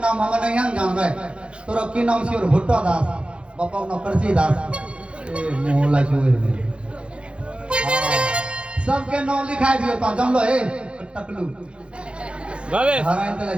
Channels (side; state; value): left; late; 0.058 ms